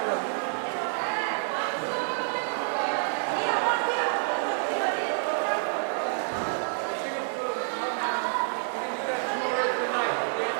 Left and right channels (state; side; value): silent; left; 59 dB below the other